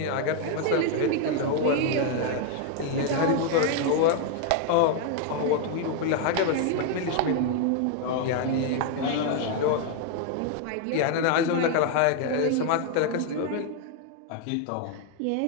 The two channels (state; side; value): different; both; correlation 0.00